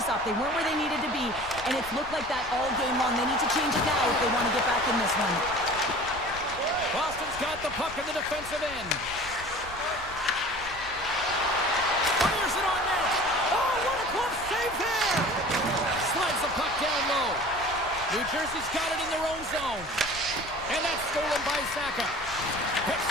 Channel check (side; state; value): left; noise; rumble, 16 dB below the sound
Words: They weren't where they needed to be, and it's looked like that all game long. They need to change it now if they want to get back in this one. Boston's got the puck in the defensive end. Fires it on net. Oh, what a close save there. Slides the puck down low. New Jersey's got it in their own zone. And that's stolen by Saka. Picks